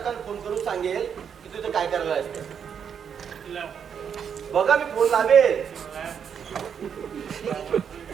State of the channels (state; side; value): quieter; left; 7.5 dB